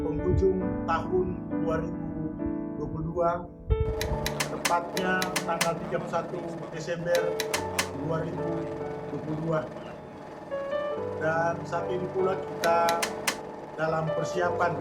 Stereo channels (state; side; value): identical; both; correlation 1.00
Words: penghujung tahun 2022, tepatnya tanggal 31 Desember 2022. Dan saat ini pula kita dalam persiapan